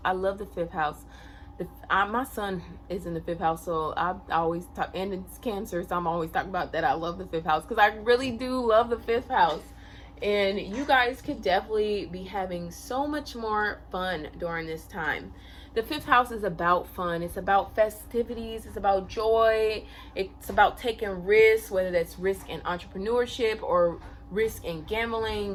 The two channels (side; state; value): both; identical; correlation 1.00